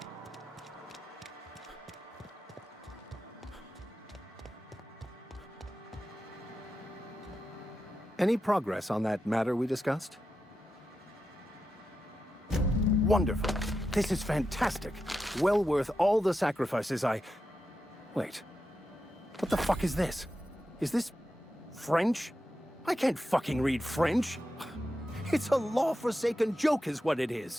Any progress on that matter we discussed? Wonderful. This is fantastic. Well worth all the sacrifices I... Wait. What the fuck is this? Is this... French? I can't fucking read French. It's a law-forsaken joke is what it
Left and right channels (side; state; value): both; normal; correlation 0.89